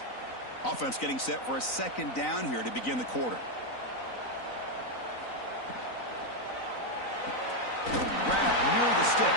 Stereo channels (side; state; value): right; late; 3.9 ms